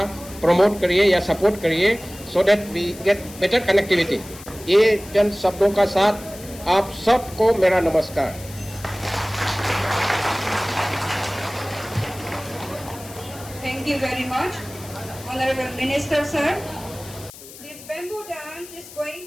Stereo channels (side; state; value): left; noise; hiss, 17 dB below the sound